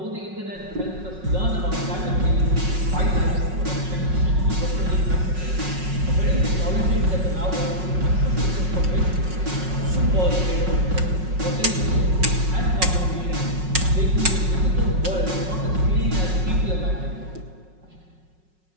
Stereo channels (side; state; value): left; late; 5.4 ms